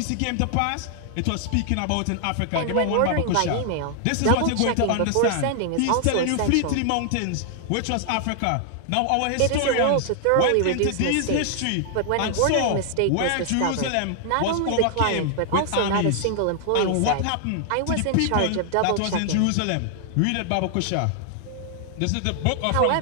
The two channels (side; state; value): both; different; correlation 0.00